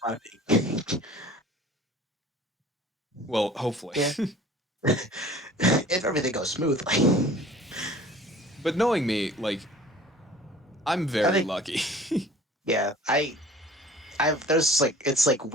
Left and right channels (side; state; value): both; normal; correlation 0.46